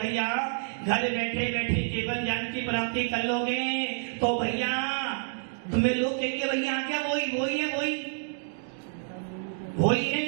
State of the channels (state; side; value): silent; left; digital silence